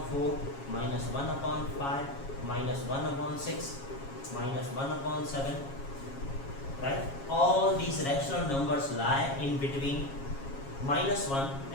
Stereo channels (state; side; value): late; right; 7.3 ms